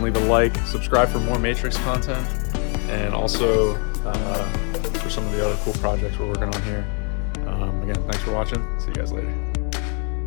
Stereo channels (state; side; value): quieter; right; 37.9 dB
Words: leave a like, subscribe for more Matrix content, and also for some of the other cool projects we're working on here. Again, thanks for watching. See you guys later.